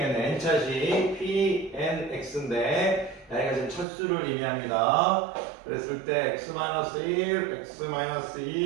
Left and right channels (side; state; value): left; drops out; at 3.9 s